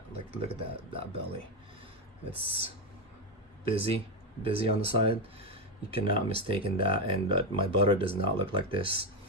Like look at that belly. It's busy on the side. You cannot mistake that, and my butter does not look like this.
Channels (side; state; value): both; normal; correlation 0.09